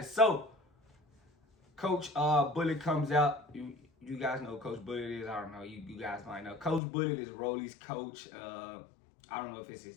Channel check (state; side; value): drops out; right; at 6.8 s